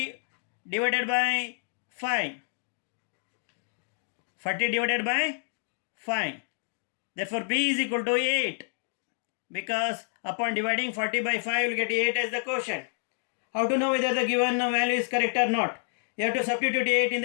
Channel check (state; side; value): silent; right; digital silence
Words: divided by 5. 40 divided by 5. Therefore B is equal to 8. Because upon dividing 40 by 5, you will get 8 as the quotient. How to know whether the given value is correct or not? You have to substitute 8 in